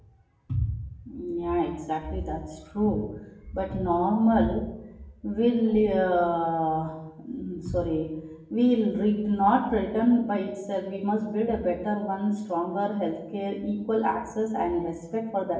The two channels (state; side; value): identical; both; correlation 1.00